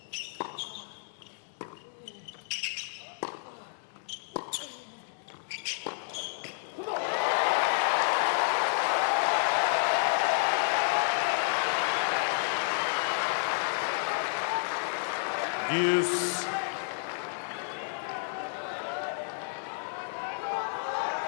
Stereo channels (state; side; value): silent; right; digital silence